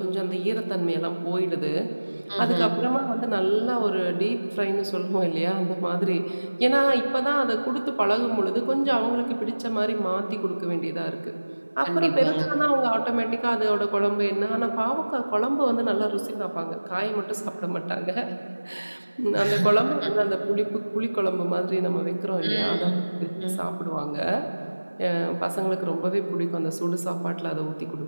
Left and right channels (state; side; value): inverted; both; correlation -1.00